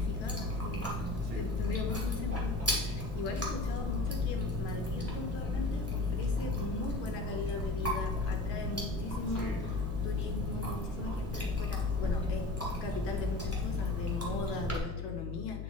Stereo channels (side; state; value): left; noise; hum, 5 dB below the sound